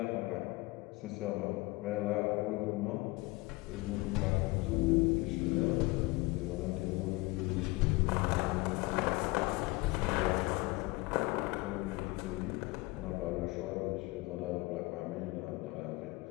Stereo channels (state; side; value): quieter; right; 22.9 dB